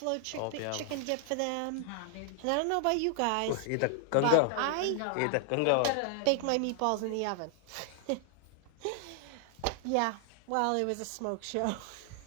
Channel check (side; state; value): both; different; correlation 0.00